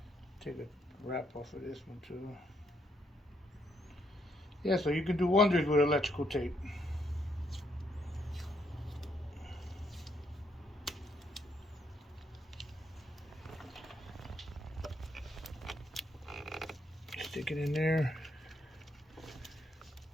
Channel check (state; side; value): normal; both; correlation 0.74